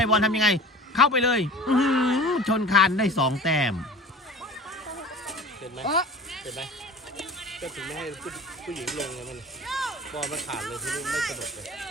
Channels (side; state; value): both; normal; correlation 0.40